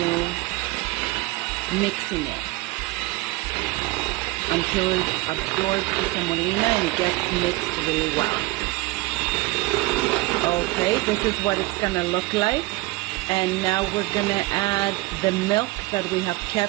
mixing it until it absorbs the semolina and it gets mixed really well. Okay, this is what it's gonna look like. And now we're gonna add the milk that we have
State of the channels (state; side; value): quieter; left; 21.2 dB